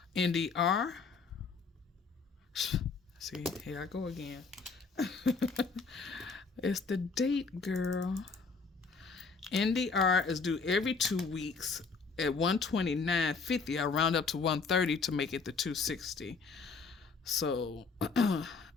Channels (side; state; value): right; quieter; 4.7 dB